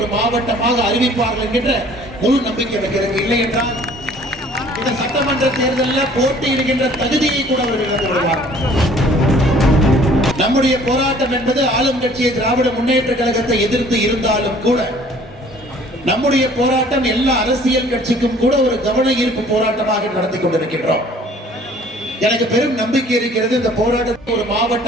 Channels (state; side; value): normal; both; correlation 0.54